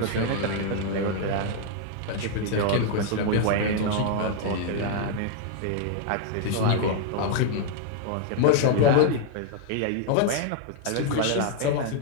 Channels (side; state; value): both; different; correlation 0.00